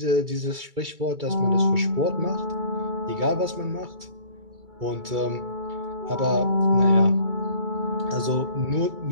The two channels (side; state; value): left; late; 2.3 ms